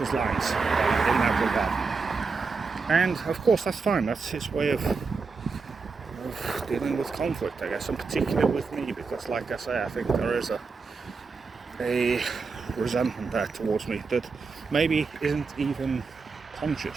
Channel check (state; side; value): quieter; left; 4.7 dB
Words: lines in that regard. And of course, that's fine. That's his way of dealing with conflict, I guess, and particularly with me, because, like I say, I think there is a resentment there towards me that maybe isn't even